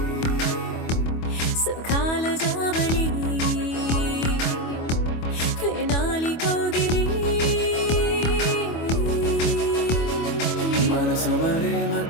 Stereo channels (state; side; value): late; right; 25 ms